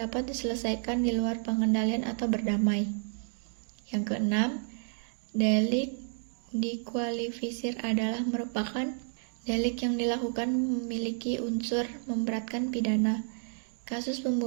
diselesaikan di luar pengendalian atau berdamai. Yang keenam, delik dikualifisir adalah merupakan delik yang dilakukan memiliki unsur memberatkan pidana. Kasus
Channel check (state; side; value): silent; left; digital silence